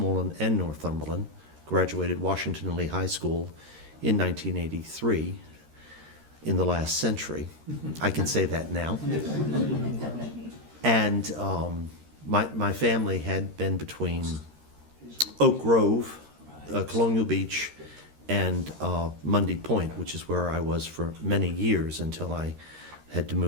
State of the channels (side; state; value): left; late; 13 ms